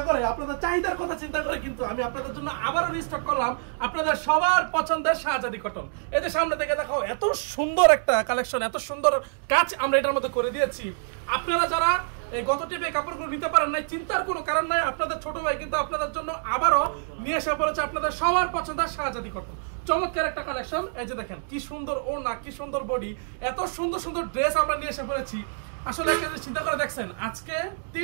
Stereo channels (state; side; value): silent; left; digital silence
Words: করে, আপনাদের চাহিদার কথা চিন্তা করে কিন্তু আমি আপনাদের জন্য আবারও রিস্টক করলাম আপনাদের সবার পছন্দের শাহজাদি কটন। এই যে সামনে থেকে দেখাও, এত সুন্দর একটা কালেকশন, এত সুন্দর কাজ আমরা এটার মধ্যে করে দিয়েছি। আপনারা যারা এই গত টিপে কাপড়গুলো নিতে পারেন নাই, চিন্তার কোনো কারণ নাই, আপনাদের ছোট ভাই কিন্তু আপনাদের জন্য আবারও নিয়ে এসে পড়েছে আপনাদের সবার পছন্দের শাহজাদি কটন। চমৎকার একটা কালেকশন। এই যে দেখেন কি সুন্দর ওড়না, কি সুন্দর বডি, এত সুন্দর সুন্দর ড্রেস আমরা নিয়ে এসে পড়েছি। আসলে একটা জিনিস চিন্তা করে দেখছেন, আজকে